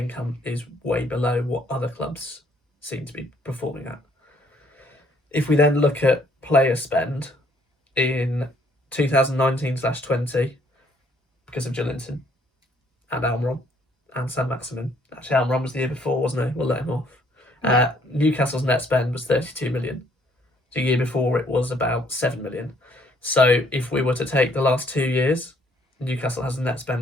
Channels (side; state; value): both; normal; correlation 0.64